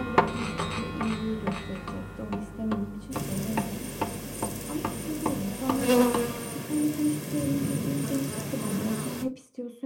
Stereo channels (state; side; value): identical; both; correlation 1.00